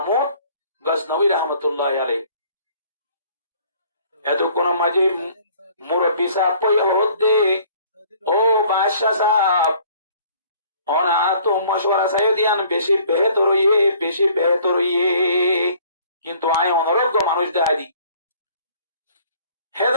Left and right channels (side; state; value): both; inverted; correlation -0.56